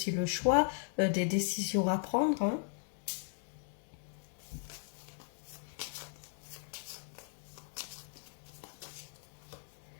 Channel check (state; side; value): silent; right; digital silence